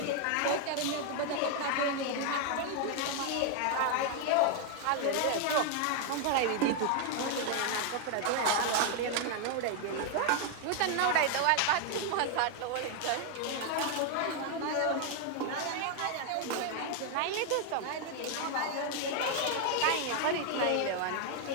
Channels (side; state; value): both; different; correlation 0.00